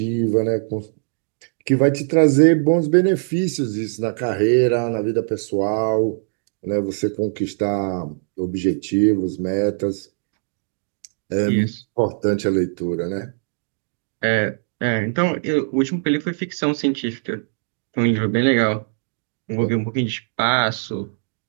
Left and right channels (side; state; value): left; silent; digital silence